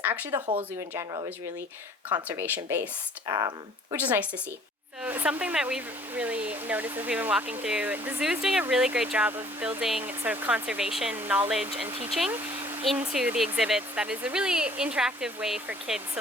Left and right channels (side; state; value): both; normal; correlation 0.55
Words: Actually, the whole zoo in general is really conservation based, which is nice to see. So something that we've really noticed as we've been walking through, the zoo is doing a really great job of building sort of conservation knowledge and teaching into the exhibits. That is a really interactive way for kids.